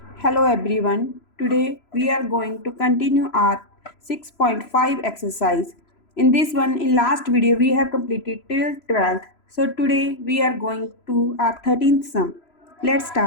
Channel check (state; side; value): late; right; 3.0 ms